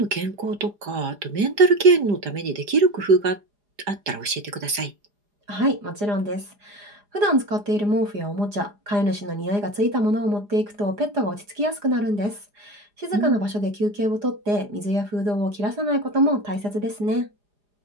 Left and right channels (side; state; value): left; late; 5.0 ms